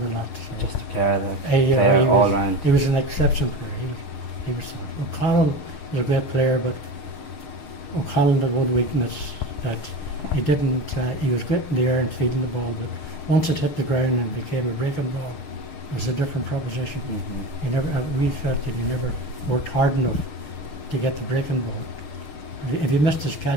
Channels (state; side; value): late; right; 5.8 ms